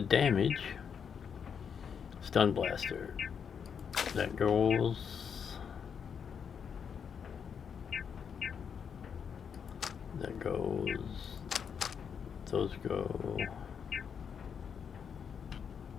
damage, stun blaster, that goes, those go.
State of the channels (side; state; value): right; quieter; 7.1 dB